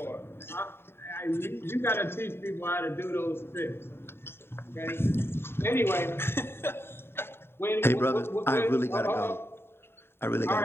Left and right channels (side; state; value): right; late; 0.11 ms